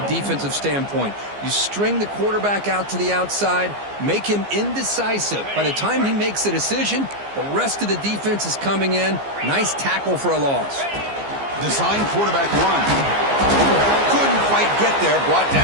defensive standpoint. You string the quarterback out to the outside, make him indecisive. By the time he makes a decision, the rest of the defense is coming in. Nice tackle for a loss. Design quarterback run. Couldn't quite get there, brought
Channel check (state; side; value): late; left; 15 ms